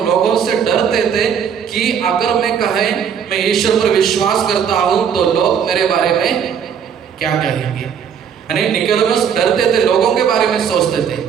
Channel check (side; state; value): left; quieter; 7.6 dB